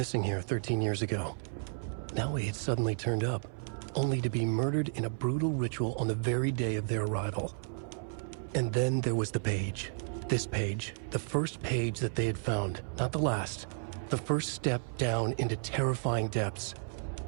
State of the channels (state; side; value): silent; left; 56 dB below the other